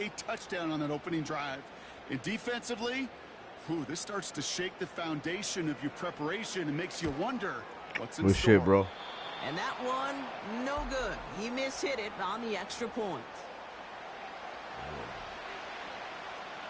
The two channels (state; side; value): identical; both; correlation 1.00